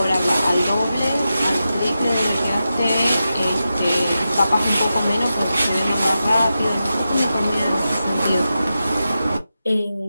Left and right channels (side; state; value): both; inverted; correlation -0.91